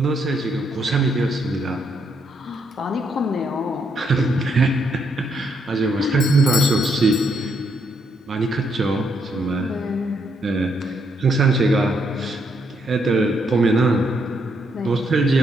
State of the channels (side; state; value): both; normal; correlation 0.75